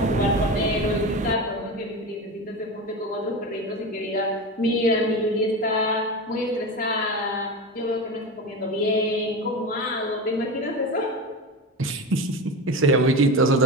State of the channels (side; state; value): both; normal; correlation 0.23